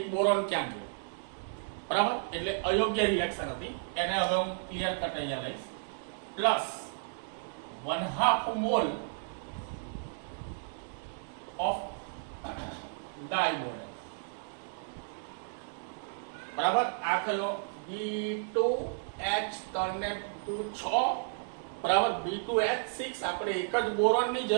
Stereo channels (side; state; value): left; silent; digital silence